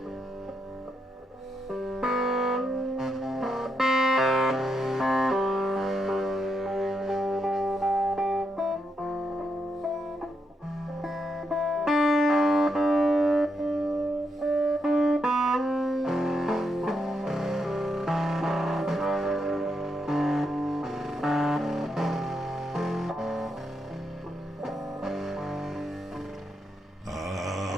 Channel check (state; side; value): normal; both; correlation 0.81